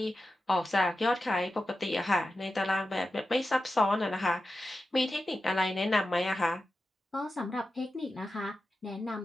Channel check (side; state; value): both; normal; correlation 0.92